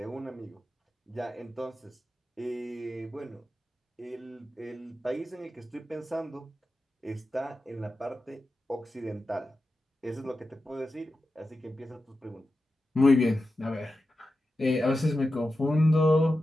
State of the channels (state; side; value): normal; both; correlation 0.92